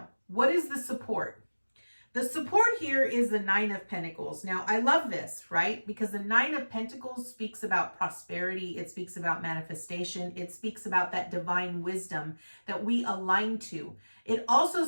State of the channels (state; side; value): inverted; both; correlation -1.00